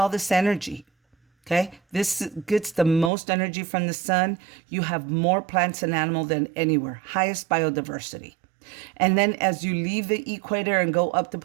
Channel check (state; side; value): drops out; left; at 3.1 s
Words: this energy. Okay, this gets the most energy from the sun. You have more plants and animal than anywhere, highest biodiversity. And then as you leave the equator and go up the